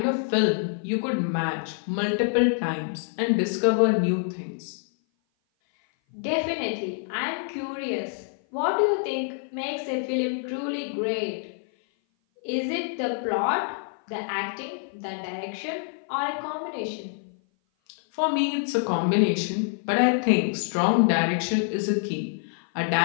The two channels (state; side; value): silent; right; 56 dB below the other